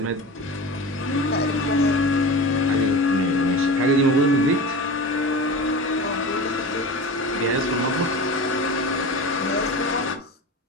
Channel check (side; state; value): both; normal; correlation 0.31